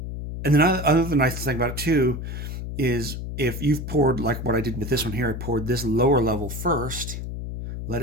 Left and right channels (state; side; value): noise; left; hum, 6 dB below the sound